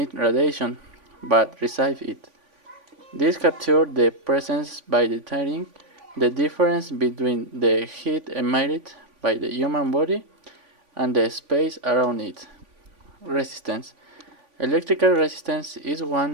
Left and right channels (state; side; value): late; left; 3.5 ms